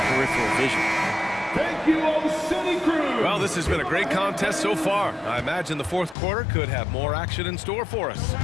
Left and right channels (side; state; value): right; drops out; at 6.2 s